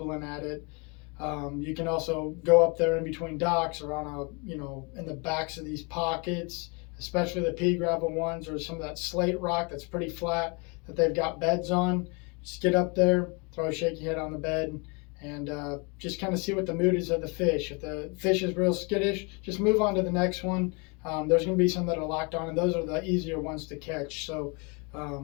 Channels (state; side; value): quieter; right; 31.4 dB